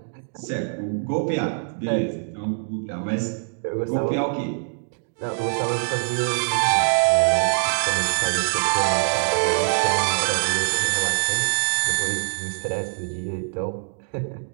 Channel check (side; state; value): left; silent; digital silence